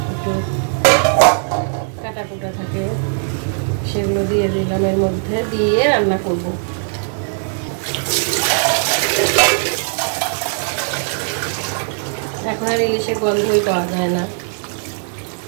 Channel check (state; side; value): silent; left; 59 dB below the other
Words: একটু কাটা কুটা থাকে সেগুলো দিয়ে দিলাম, এর মধ্যে দিয়ে রান্না করব। এখন আর ইলিশের গন্ধই পাওয়া যায় না।